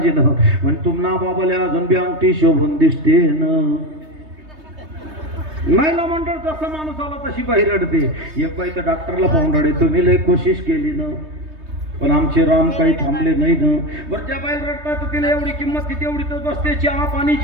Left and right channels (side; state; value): left; late; 3.2 ms